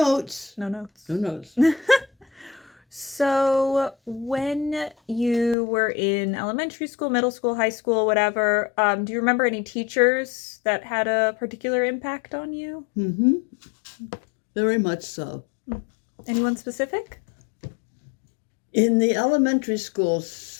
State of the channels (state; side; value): drops out; right; at 5.6 s